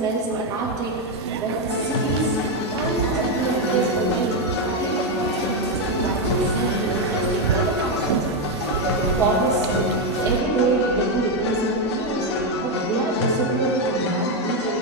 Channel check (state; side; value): normal; both; correlation 0.05